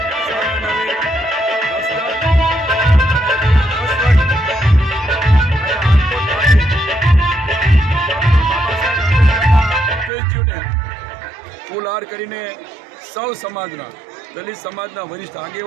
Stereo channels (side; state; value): left; drops out; at 10.1 s